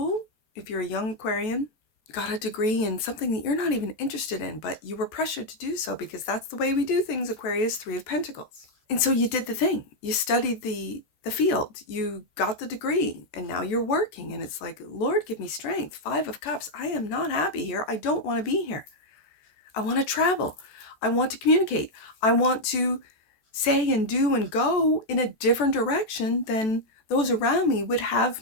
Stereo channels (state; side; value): late; right; 14 ms